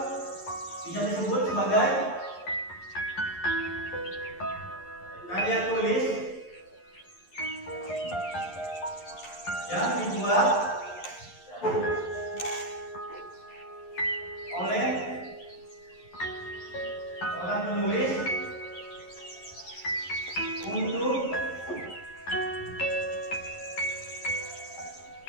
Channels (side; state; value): right; late; 11 ms